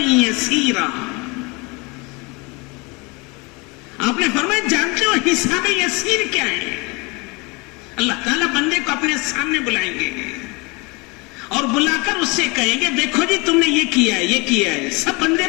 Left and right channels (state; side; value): quieter; right; 27.7 dB